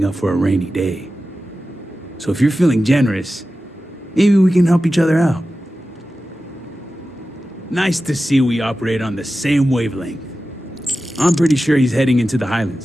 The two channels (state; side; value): normal; both; correlation 0.94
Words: up for a rainy day. So if you're feeling generous, maybe we can help each other out. Nice to see we operate on the same wavelength. I'm pretty sure he's heading into the